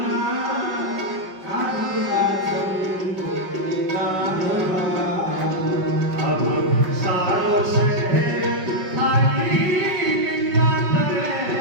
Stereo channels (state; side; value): late; left; 5.4 ms